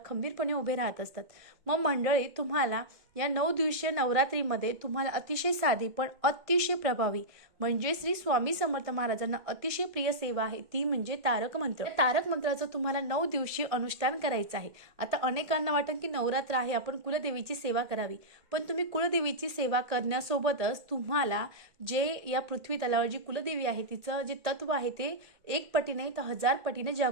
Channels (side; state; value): left; late; 1.5 ms